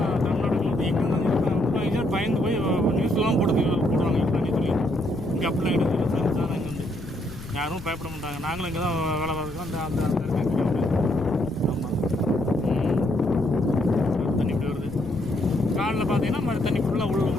தமிழ்நாட்டுக்கு எங்கே பயந்து போய் நியூஸ்லாம் போடுவாங்க தண்ணி சொல்லி. இங்கே அப்படிலாம் கிடையாது. சயின்ஸாக இங்கே வந்து யாரும் பயப்பட மாட்டாங்க. நாங்களும் இங்கே தான் வேலை பார்த்துக்கோம். அந்த அந்த ஆமாம். தண்ணி இப்படி வருது. காலில் பார்த்தீங்கன்னா மாதிரி தண்ணி ஃபுல்லாக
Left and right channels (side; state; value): left; noise; rumble, 15 dB below the sound